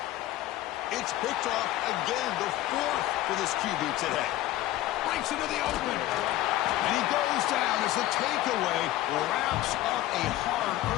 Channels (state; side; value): quieter; right; 15.0 dB